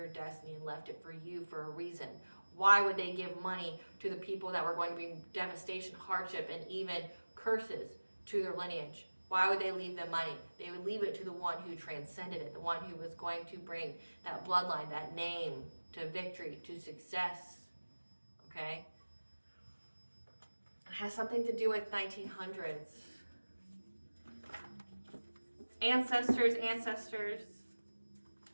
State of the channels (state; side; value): inverted; both; correlation -1.00